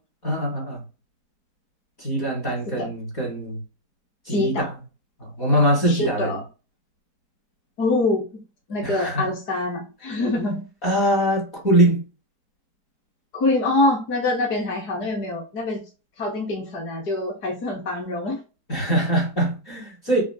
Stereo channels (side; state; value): right; late; 4.2 ms